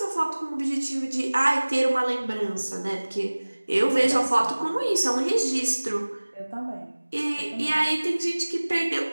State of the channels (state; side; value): inverted; both; correlation -1.00